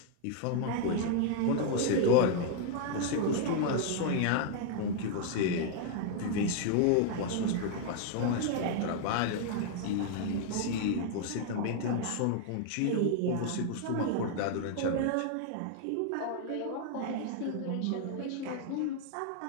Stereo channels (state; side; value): different; both; correlation 0.00